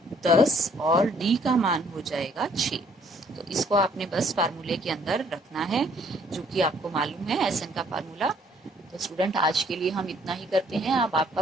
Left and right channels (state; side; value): normal; both; correlation 0.62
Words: 10 और d का मान हो जाएगा 6। तो इसको आपने बस फार्मूले के अंदर रखना है, जो कि आपको मालूम है SN का फार्मूला। तो स्टूडेंट आज के लिए हम इतना ही करते हैं। अब आपका